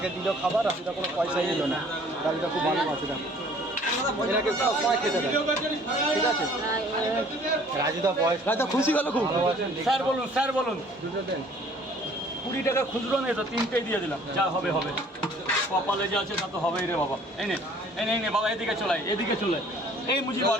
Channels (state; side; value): normal; both; correlation 0.55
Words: দিল খাবার, রাজুদা কোনো পয়সাই নিল না। রাজুদা খুব ভালো আছে, দেখো এনাকে সবাই খেতে দেয়, ঠিক আছে? রাজুদা বয়স, রাজুদা খুশি গেল খুব। স্যার বলুন, স্যার বলুন। দুটো দেন। 20 টাকা খুচরো নেই তো, 3টেই দিয়ে দিলাম। যা হবে হবে, কপালে যা আছে তা তো হবেই রে বাবা। এনে এনে এনে বাবা, এদিকে চলাই, এদিকে চলে। এই মুজি বল,